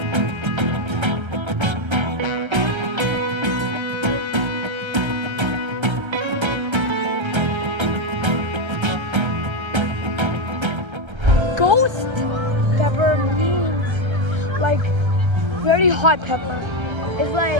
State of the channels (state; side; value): late; left; 1.3 ms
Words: Ghost pepper means like very hot pepper. It's